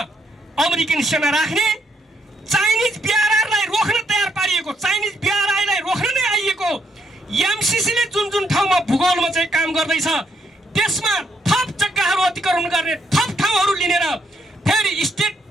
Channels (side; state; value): both; normal; correlation 0.74